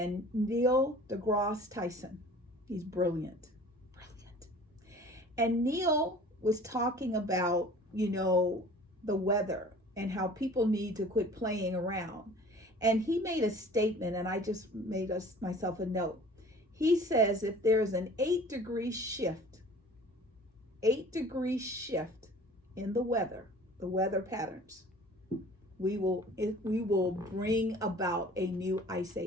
Neil deGrasse Tyson. He's brilliant. And Neil was talking about, the weather and how people need to quit playing around. And he made a statement, and I just made myself a note. He says if there's an 8-degree shift in the weather patterns, we will bring about a new ice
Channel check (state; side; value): normal; both; correlation 0.47